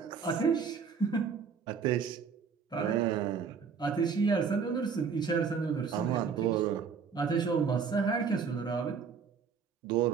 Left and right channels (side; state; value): left; quieter; 6.0 dB